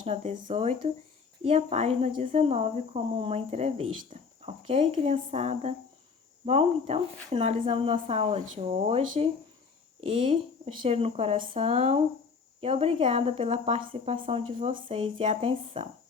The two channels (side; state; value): right; quieter; 5.3 dB